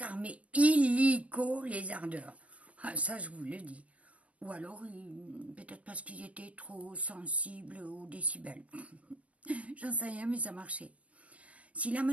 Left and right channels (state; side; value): late; left; 0.065 ms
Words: illico les ardeurs. Ça, je vous le dis. Ou alors, peut-être parce qu'ils étaient trop sensibles aux décibels. J'en sais rien, mais ça marchait. Si la